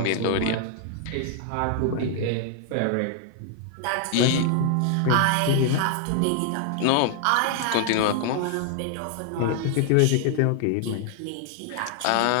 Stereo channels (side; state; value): both; different; correlation 0.00